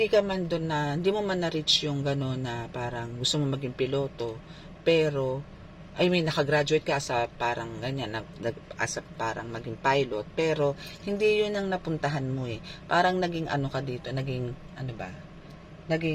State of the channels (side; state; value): both; identical; correlation 1.00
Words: ka man doon na hindi mo man na-reach yung gano'n na parang gusto mo maging piloto, pero I mean nakagraduate ka sa parang ganyan, as a parang maging pilot, pero hindi yun ang napuntahan mo eh. Parang naging ano ka dito, naging ano ba?